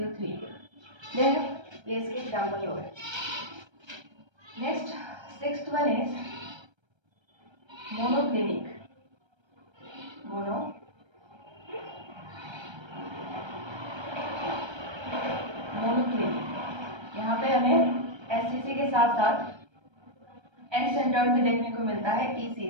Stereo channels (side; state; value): left; late; 1.3 ms